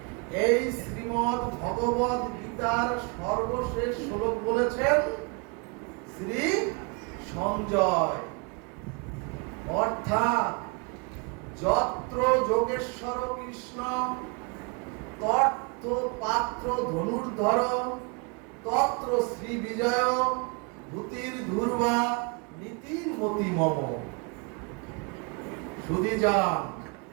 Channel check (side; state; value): left; quieter; 33.0 dB